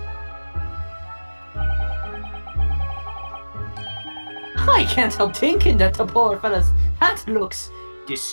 I can't help thinking that the poor fella's hat looks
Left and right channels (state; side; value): inverted; both; correlation -1.00